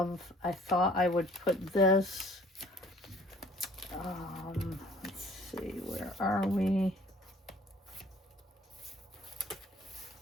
I thought I would put this, let's see, where are we?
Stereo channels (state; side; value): normal; both; correlation 0.54